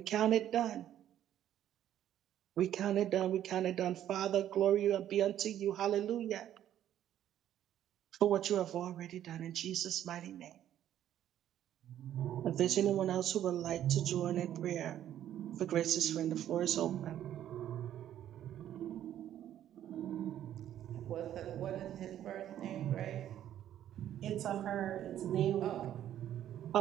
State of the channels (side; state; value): left; quieter; 11.3 dB